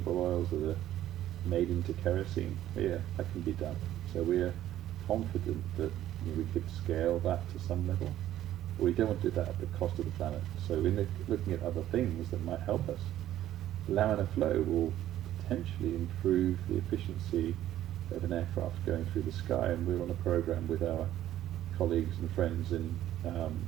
oils that are made into kerosene. Yeah, that can be done. So we're confident that we could scale that to some level. But we don't want to do that at the cost of the planet. So we're looking at other things that might help us. Laminar flow will potentially improve the efficiency of an aircraft going through the sky, and we're on a program with our colleagues and friends in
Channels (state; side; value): quieter; left; 12.7 dB